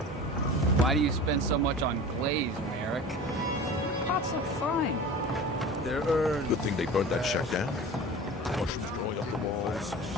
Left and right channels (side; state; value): both; normal; correlation 0.36